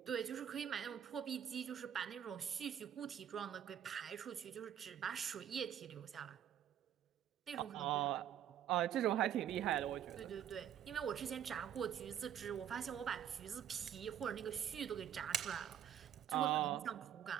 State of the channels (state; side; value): quieter; left; 9.8 dB